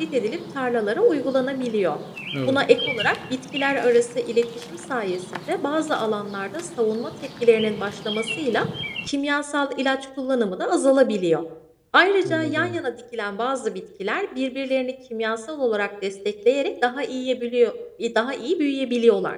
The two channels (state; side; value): identical; both; correlation 1.00